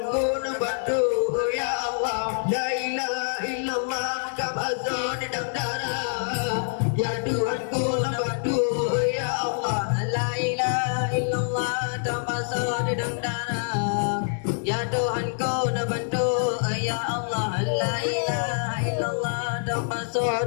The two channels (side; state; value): right; silent; digital silence